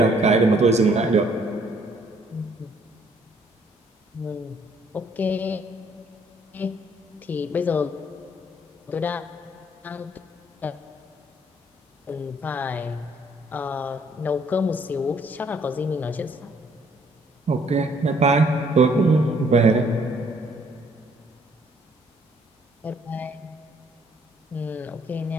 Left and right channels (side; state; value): both; normal; correlation 0.64